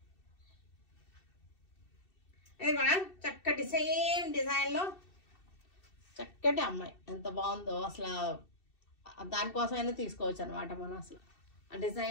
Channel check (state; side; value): late; right; 2.7 ms